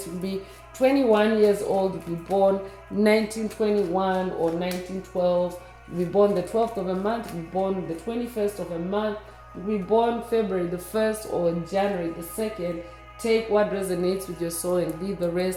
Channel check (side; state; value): both; identical; correlation 1.00